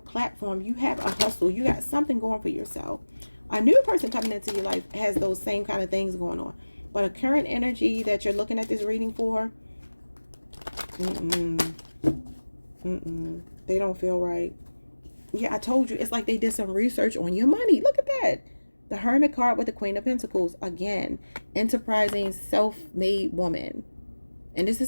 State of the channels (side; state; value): both; inverted; correlation -1.00